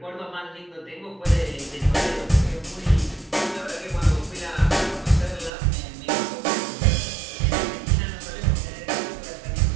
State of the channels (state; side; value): drops out; left; at 5.5 s